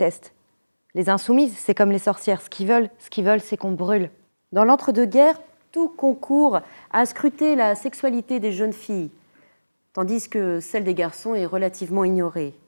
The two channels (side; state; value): both; inverted; correlation -1.00